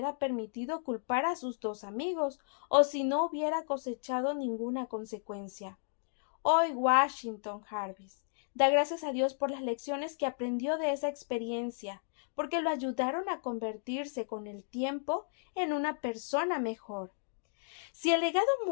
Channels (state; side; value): silent; right; digital silence